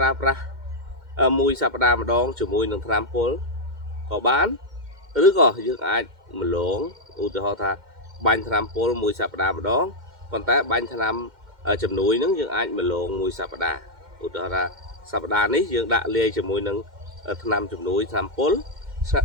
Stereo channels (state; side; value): late; left; 2.1 ms